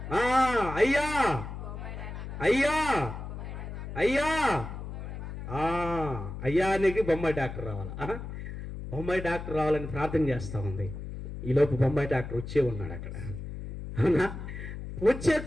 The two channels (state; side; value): noise; left; hum, 8 dB below the sound